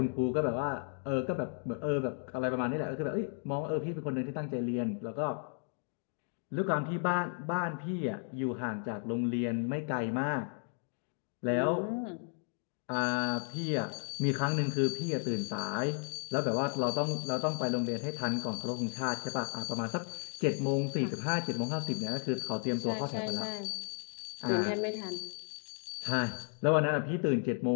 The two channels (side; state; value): right; silent; 55 dB below the other